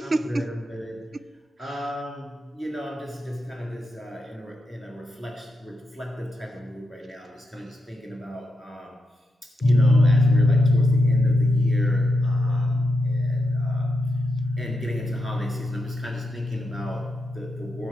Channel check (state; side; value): normal; both; correlation 0.86